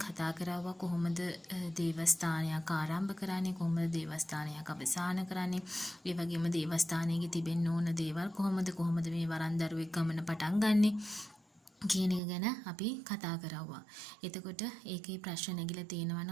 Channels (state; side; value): drops out; left; at 12.2 s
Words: කතා කරාවා කොහොමද දේවස්ථානයක් ආරම්භ කරන්නේ, කොහොමද දේවස්ථානයක් අවසන් කරන්නේ, ඒ වගේම දේවස්ථානයේ තිබෙන්න ඕන දේවල් කොහොමද මේ වරන් දරුවෙක් ගමන පටන් ගන්නෙ කියන එක ගැන අපි කතා කරවුවා. එතකොට ඒකේ ප්‍රශ්න නැගිලා තියෙනවා